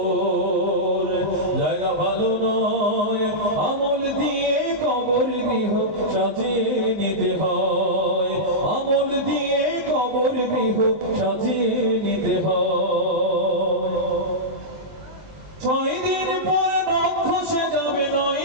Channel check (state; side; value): late; left; 20 ms